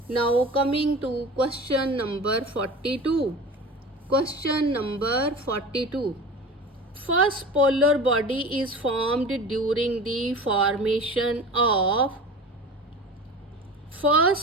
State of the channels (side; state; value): both; normal; correlation 0.35